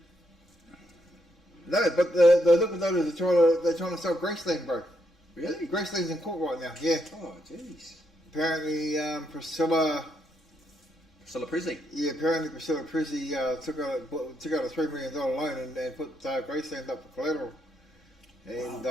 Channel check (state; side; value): normal; both; correlation 0.78